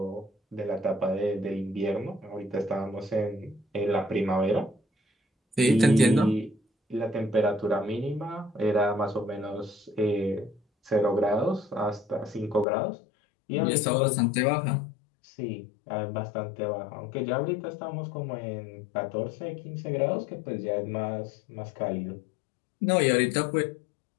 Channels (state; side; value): drops out; right; at 12.7 s